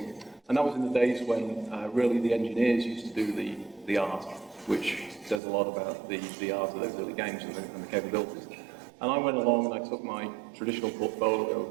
And that was in the days when really the engineers used to do the art, which says a lot about the art of those early games and the capabilities. And I went along and I took my traditional portfolio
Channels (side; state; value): left; drops out; at 5.4 s